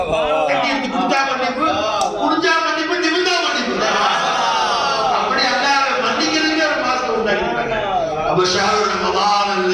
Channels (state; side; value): identical; both; correlation 1.00